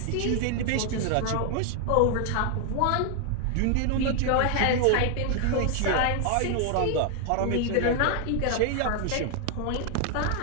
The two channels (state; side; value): different; both; correlation 0.00